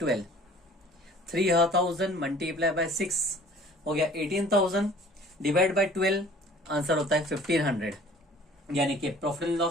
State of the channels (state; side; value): normal; both; correlation 0.50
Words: 3,000 मल्टीप्लाई बाय 6 हो गया 18,000 डिवाइड बाय 12, आंसर होता है 1,500। यानी कि profit and